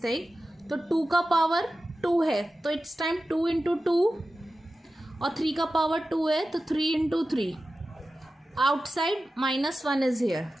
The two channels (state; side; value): normal; both; correlation 0.94